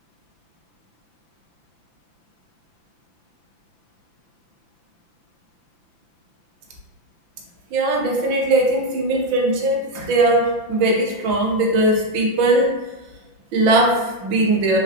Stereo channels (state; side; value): late; left; 5.9 ms